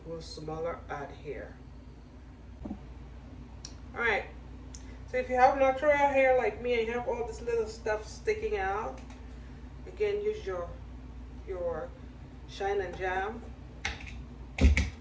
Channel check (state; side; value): identical; both; correlation 1.00